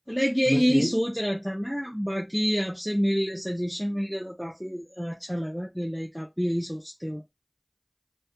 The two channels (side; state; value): both; identical; correlation 1.00